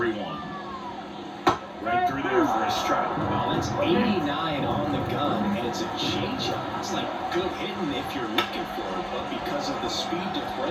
Right through there for a strike. Well, that's 89 on the gun, and it's a changeup. It's like good hitting if you're looking for it, but because of the speed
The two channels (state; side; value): identical; both; correlation 1.00